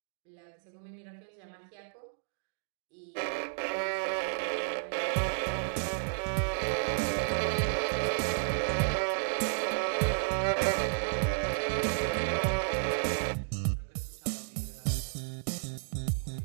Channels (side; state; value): left; silent; digital silence